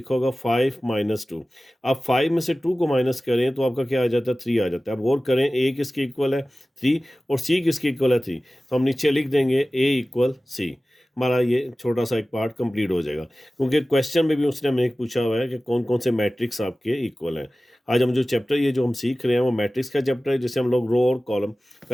होगा 5 - 2। आप 5 में से 2 को माइनस करें तो आपका क्या आ जाता है, 3 आ जाता है। अब गौर करें, ए किसके इक्वल है 3, और सी किसके इक्वल है 3। तो हम नीचे लिख देंगे ए इक्वल सी। हमारा ये छोटा सा एक पार्ट कंप्लीट हो जाएगा, क्योंकि क्वेश्चन में भी उसने हमें एक पूछा हुआ है कि कौन कौन से मैट्रिक्स आपके इक्वल हैं। आज हम जो चैप्टर ये जो हम सीख रहे हैं वो मैट्रिक्स का चैप्टर है, जिसे हम लोग रो और कॉलम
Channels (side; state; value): both; normal; correlation 0.97